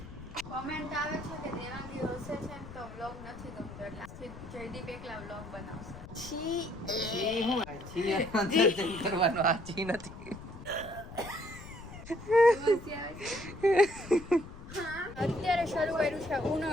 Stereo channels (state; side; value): noise; left; rumble, 14 dB below the sound